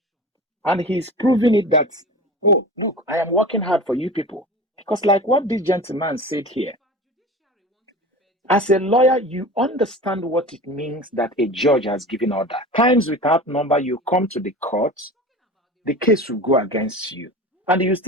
And he's proving it that, oh, look, I am working hard for you people. Because like what this gentleman said here, as a lawyer, you understand what it means that a judge has given order. Times without number, you come to the court, the case will go against you. And you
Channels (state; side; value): normal; both; correlation 0.34